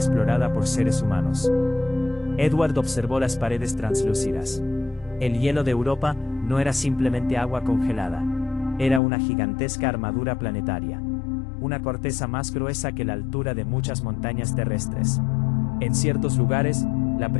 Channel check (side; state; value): right; drops out; at 9.0 s